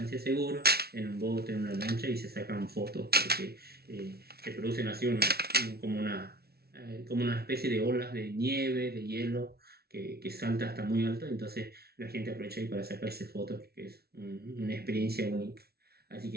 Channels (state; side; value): late; left; 0.45 ms